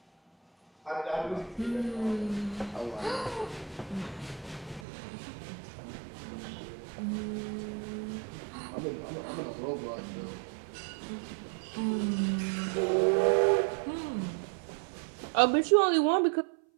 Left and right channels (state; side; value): drops out; left; at 4.9 s